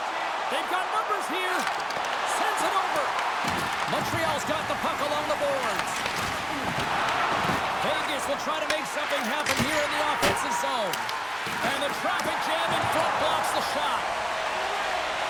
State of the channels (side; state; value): both; identical; correlation 1.00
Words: They've got numbers here. Sends it over. Montreal's got the puck along the boards. Vegas will try to make something happen here in the offensive zone. And the traffic jam in front blocks the shot.